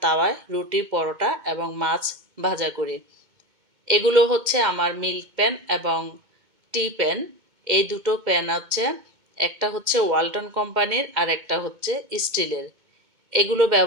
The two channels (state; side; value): late; left; 2.2 ms